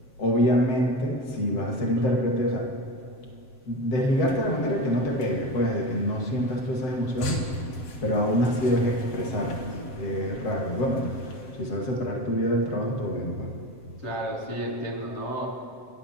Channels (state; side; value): late; right; 7.6 ms